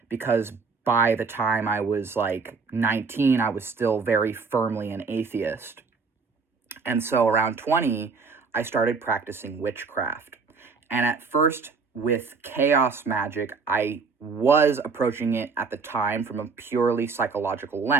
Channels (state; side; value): quieter; left; 4.7 dB